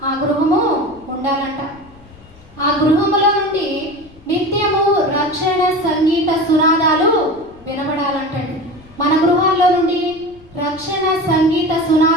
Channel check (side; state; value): left; noise; rumble, 26 dB below the sound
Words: ఆ గృహము ఉండాలంట. ఆ గృహములో నుండి నిత్యము రక్షణ సంగీత సునాదాలు వినబడాలంటండి. మన గృహాల్లో నుండి రక్షణ సంగీత